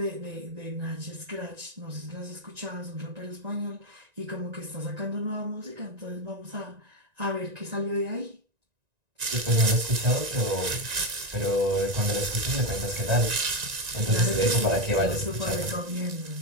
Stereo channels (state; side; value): late; left; 1.9 ms